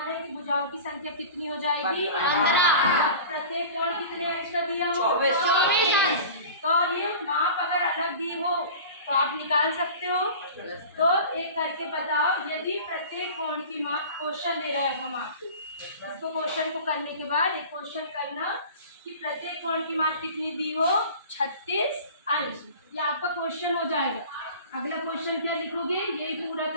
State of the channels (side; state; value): both; inverted; correlation -0.38